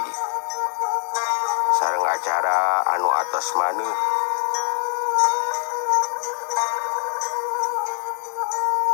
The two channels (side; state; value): right; silent; 55 dB below the other